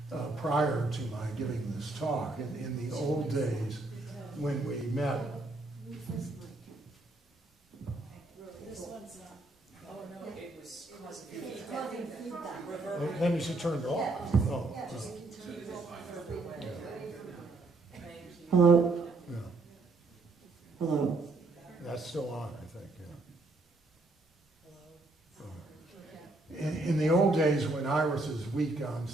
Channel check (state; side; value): quieter; left; 3.1 dB